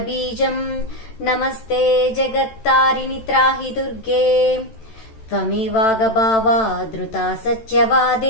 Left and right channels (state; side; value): late; right; 13 ms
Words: नमस्ते जगत्तारिणि त्राहि दुर्गे, त्वमेवागभावा धृता